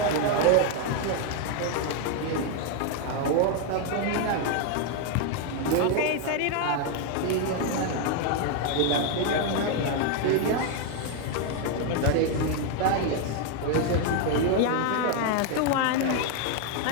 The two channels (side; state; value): both; different; correlation 0.01